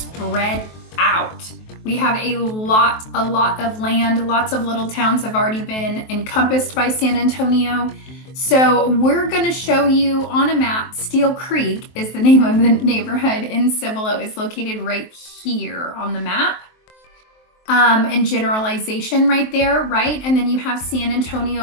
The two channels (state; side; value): late; right; 23 ms